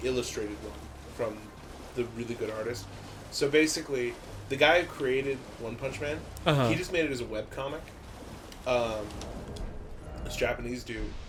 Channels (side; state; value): both; identical; correlation 1.00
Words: illustrated one from the really good artist. So basically, the guy who created One Punch Man, he just made it as a webcomic. This Japanese dude,